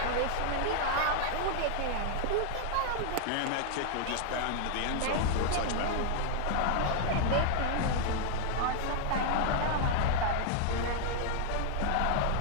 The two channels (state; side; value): different; both; correlation 0.00